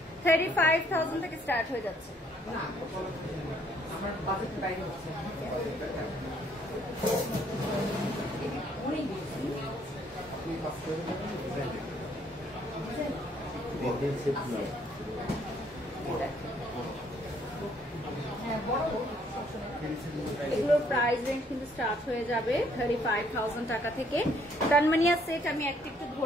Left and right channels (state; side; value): normal; both; correlation 0.65